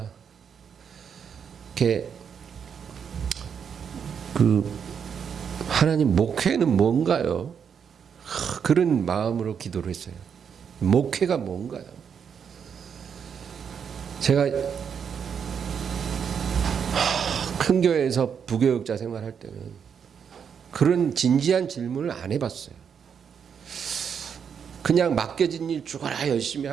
이렇게 하나님 목회는 뭔가요? 그런 마음으로 기도를 했어요. 목회가 뭔가요? 제가 큰 교회에서 부교육자 생활할 때는 그런 진지한 질문을 안 해봤어요. 그냥 맡겨진 일 죽어라 열심히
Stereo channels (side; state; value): left; quieter; 7.2 dB